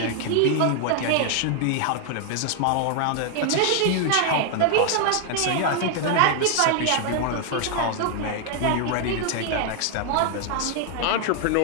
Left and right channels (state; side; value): different; both; correlation 0.00